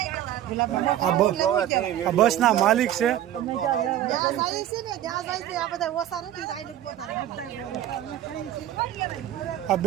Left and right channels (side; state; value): left; quieter; 12.1 dB